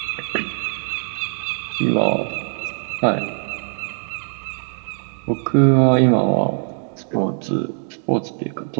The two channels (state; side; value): silent; left; digital silence